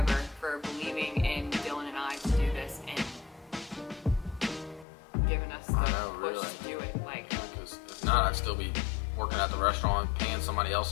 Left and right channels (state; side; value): drops out; right; at 4.9 s